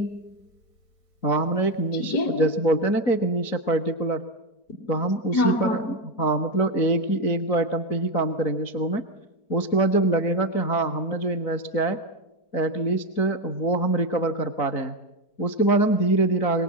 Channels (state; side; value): late; right; 4.6 ms